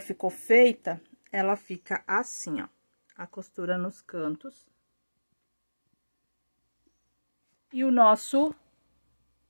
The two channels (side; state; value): both; inverted; correlation -1.00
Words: feita, ela fica assim, ó, a costura nos cantos. E o nosso